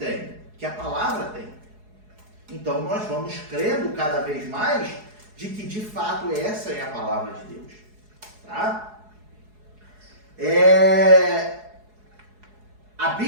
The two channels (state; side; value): late; left; 4.7 ms